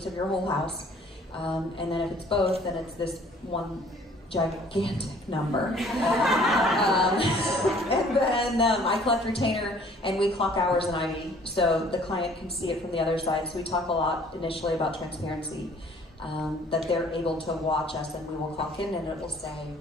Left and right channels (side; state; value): both; normal; correlation 0.55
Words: of your whole house. And then if it's both, then it's this one gigantic number. And then I collect retainer, and we clock hours in Ivy, so the client can see it from the other side. So we talk a lot initially about transparency, that they're able to watch us, and we will clock in, and it will say,